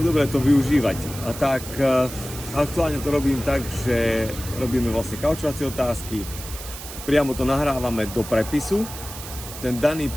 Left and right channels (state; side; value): noise; right; hiss, 12 dB below the sound